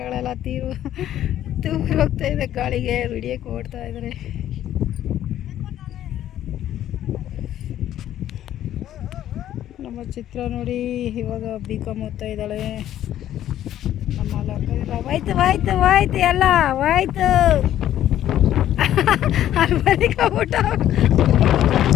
ತೂರಿ ಹೋಗ್ತಾ ಇದೆ ಗಾಳಿಗೆ. ವಿಡಿಯೋಕ್ಕೆ ಓಡ್ತಾ ಇದ್ದಾರೆ. ನಮ್ಮ ಚಿತ್ರ ನೋಡಿ, ಇವಾಗ B.Com ಓದ್ತಾ ಇದ್ದಾಳೆ. ನಮ್ಮ ಲಕ್ಕದಿಲ್ಲ. ಹೋಯ್ತು ಎಲ್ಲ ಹೋಯ್ತು. ಮನೆ ಕಬಿಟ್ಟ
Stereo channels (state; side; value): quieter; right; 12.0 dB